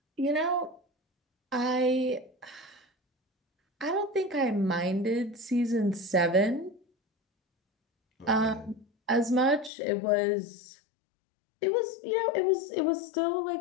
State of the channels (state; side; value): drops out; right; at 9.7 s